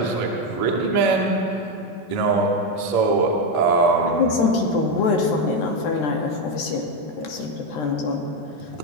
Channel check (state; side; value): late; right; 13 ms